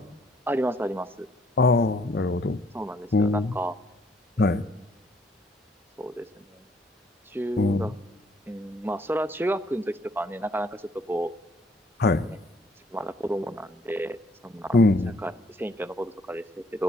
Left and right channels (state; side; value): normal; both; correlation 0.64